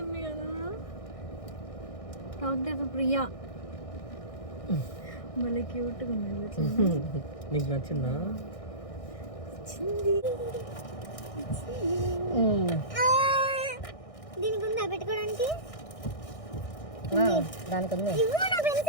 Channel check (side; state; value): right; late; 1.6 ms